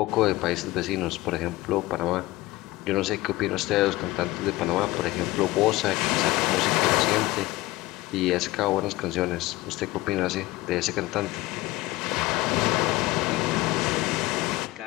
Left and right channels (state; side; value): quieter; right; 18.9 dB